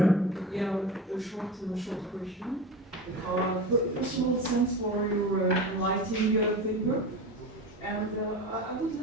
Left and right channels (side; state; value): both; normal; correlation 0.28